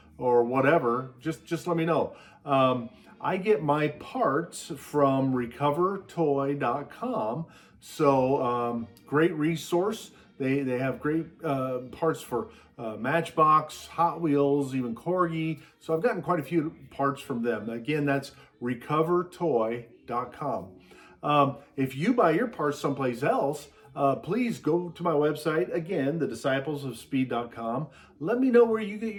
whatever, just let me know. I get my parts from recovertoy.com, so great resource. They have great parts for Matchbox, Hot Wheels, even Corgi. So I've gotten quite a few parts from them. Again, that's recovertoy.com. If you buy your parts someplace else, please go to my website, again, thedisciplesofspeed.com. Let me know where you get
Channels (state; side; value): identical; both; correlation 1.00